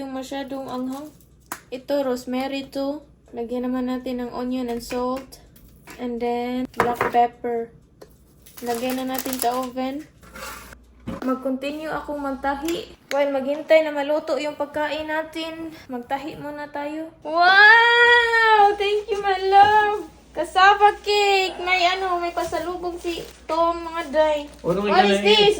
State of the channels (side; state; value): both; identical; correlation 1.00